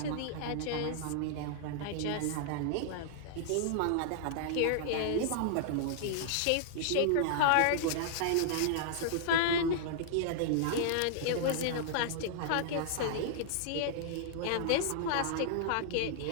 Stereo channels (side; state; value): both; different; correlation -0.01